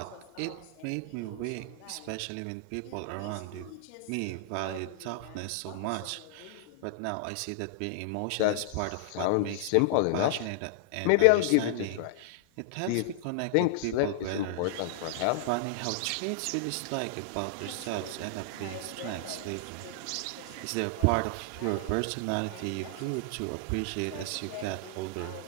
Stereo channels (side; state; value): both; different; correlation -0.01